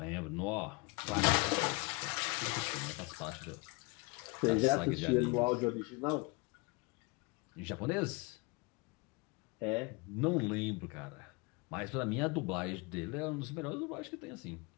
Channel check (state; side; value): quieter; right; 27.8 dB